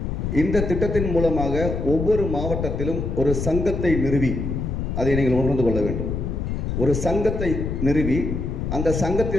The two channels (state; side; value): noise; left; rumble, 3 dB below the sound